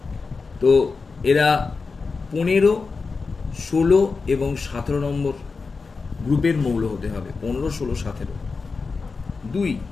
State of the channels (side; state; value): right; quieter; 4.5 dB